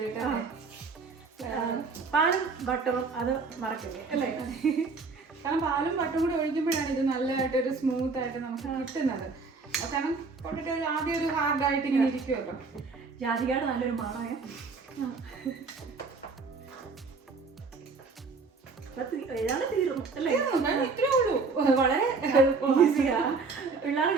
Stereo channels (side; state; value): left; quieter; 4.4 dB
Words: പാലും ബട്ടറും അത് മറക്കില്ലേ അല്ലേ? കാരണം പാലും ബട്ടറും കൂടി ഒഴിക്കുമ്പോഴാണ് ഇത് നല്ലതായിട്ടൊരു സ്മൂത്ത് ആയിട്ട് നമുക്ക് കിട്ടുന്നത്. കാരണം പൊട്ടറ്റോ ആദ്യം ഒരു ഹാർഡായിട്ട് ഇങ്ങനെ ഇരിക്കുമല്ലോ. ജാതികയുടെ നല്ലൊരു മണമേ. ഏതാണ് തീർന്നു അല്ലേ? ഇത്രേ ഉള്ളൂ, വളരെ ഈസിയാ,